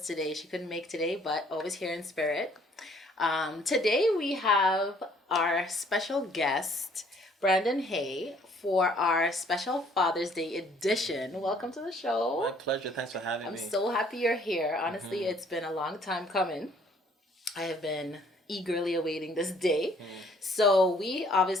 She couldn't make today, but always here in spirit. Today we have our special guest, Brandon Hay, for our special Father's Day edition. Welcome to the show. My pleasure. Thanks for having I'm me. so happy you're here. Honestly, Mm-hmm. it's been a long time coming. I have been eagerly awaiting this day. So we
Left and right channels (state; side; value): normal; both; correlation 0.61